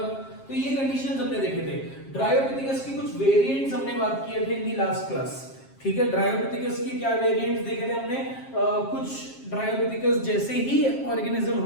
तो ये कंडीशंस हमने देखे थे. ड्रायोपिथेकस की कुछ वेरिएंट्स हमने बात किए थे इन दी लास्ट क्लास. ठीक है? ड्रायोपिथेकस की क्या वेरिएंट्स देखे थे हमने? कुछ ड्रायोपिथेकस जैसे ही ऑर्गेनिज्म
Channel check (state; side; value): late; right; 7.4 ms